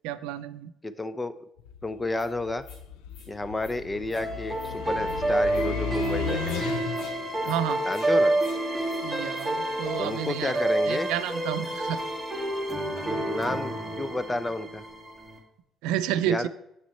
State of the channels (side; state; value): both; normal; correlation 0.75